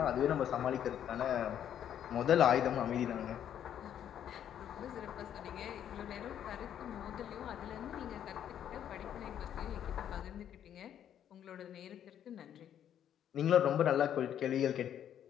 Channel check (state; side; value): quieter; right; 9.9 dB